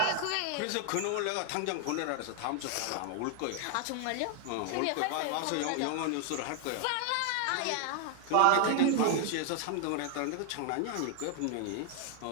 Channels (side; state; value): both; different; correlation 0.00